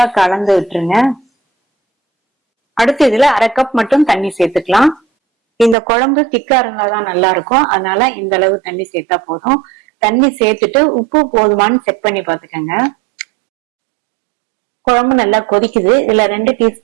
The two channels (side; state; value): left; drops out; at 5.8 s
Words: கலந்து விட்டுருங்க. அடுத்து இதுல 1/2 கப் மட்டும் தண்ணி சேர்த்துக்கலாம். இந்த குழம்பு திக்கா இருந்தாதான் நல்லா இருக்கும். அதனால இந்த அளவு தண்ணி சேர்த்தா போதும். தண்ணி சேர்த்துட்டு உப்பு போதுமான்னு செக் பண்ணி பாத்துக்கோங்க. குழம்பு நல்லா கொதிக்குது. இதுல 2